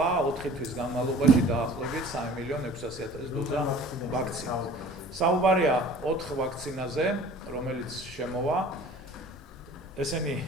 4 თვის განმავლობაში დაახლოებით 3,600,000 დოზა ვაქცინა. საუბარია 4 ვაქცინაზე, რომელიც შემოვა. ესენი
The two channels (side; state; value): both; normal; correlation 0.46